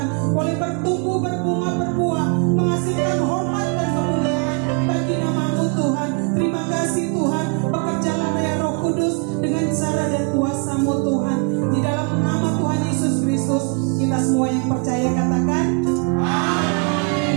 boleh bertumbuh, berbunga, berbuah, menghasilkan hormat dan kemuliaan bagi nama-Mu Tuhan. Terima kasih Tuhan, bekerjalah ya Roh Kudus dengan cara dan kuasa-Mu Tuhan. Di dalam nama Tuhan Yesus Kristus, kita semua yang percaya katakan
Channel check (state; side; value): quieter; left; 34.8 dB